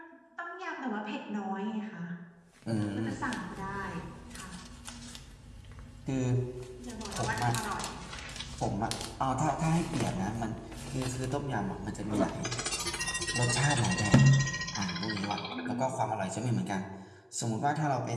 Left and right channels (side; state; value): both; identical; correlation 1.00